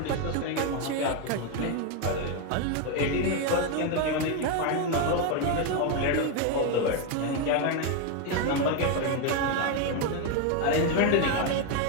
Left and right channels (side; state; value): both; different; correlation 0.02